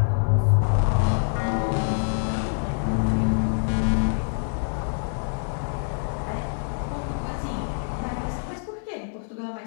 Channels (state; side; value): silent; right; digital silence